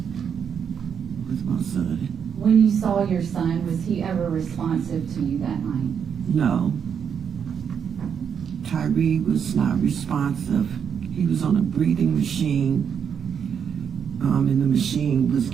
with my son. When you saw your son, was he ever responsive to you that night? No. Tyre was not responsive. He was on a breathing machine, and the machine was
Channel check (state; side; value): quieter; left; 7.5 dB